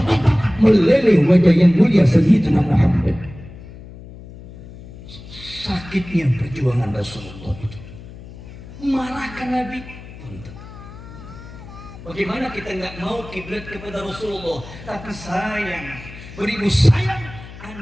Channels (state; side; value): noise; left; hum, 16 dB below the sound